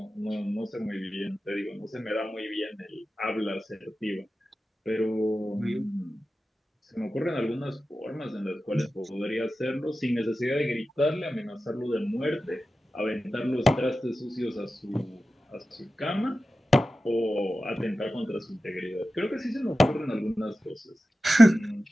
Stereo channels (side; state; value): both; normal; correlation 0.93